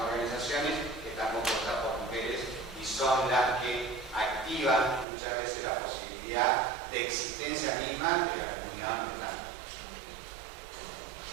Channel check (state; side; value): drops out; left; at 5.1 s